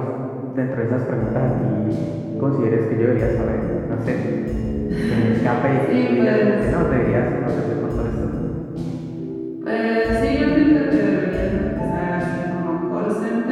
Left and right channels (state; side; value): identical; both; correlation 1.00